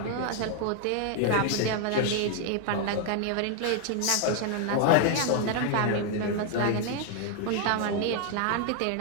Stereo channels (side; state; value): both; different; correlation 0.00